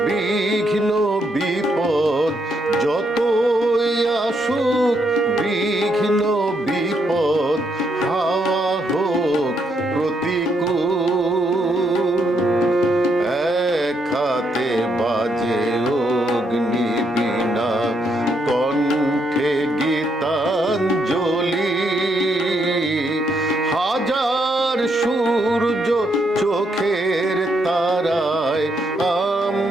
বিঘ্ন বিপদ, যতই আসুক বিঘ্ন বিপদ, হাওয়া হোক প্রতিকূল। এক হাতে বাজে অগ্নি বীণা, কণ্ঠে গীতাঞ্জলি। হাজার সূর্য চোখের তারায়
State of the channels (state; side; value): normal; both; correlation 0.76